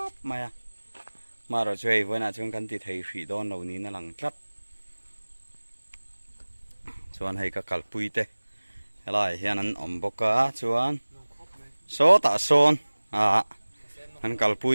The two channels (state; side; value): inverted; both; correlation -1.00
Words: maya maro chei voina chung kan ti thei thri don lo ni na lang tlat chuan hei ka kalpui te helai hian an om boka chuan so ta son an